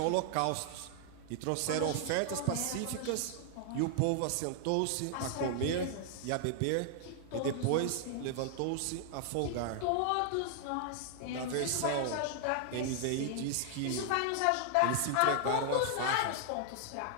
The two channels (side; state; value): both; different; correlation 0.00